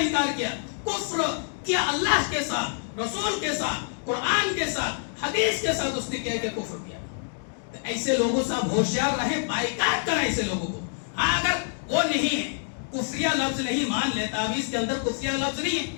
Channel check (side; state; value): right; silent; digital silence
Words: کیا، کفر کیا اللہ کے ساتھ، رسول کے ساتھ، قرآن کے ساتھ، حدیث کے ساتھ اس نے کیا کہ کفر کیا. تو ایسے لوگوں سے آپ ہوشیار رہیں، بائیکاٹ کریں ایسے لوگوں کو. ہاں اگر وہ نہیں ہے، کفریہ لفظ نہیں مان لے، تعویذ کے اندر کفریہ لفظ نہیں ہے،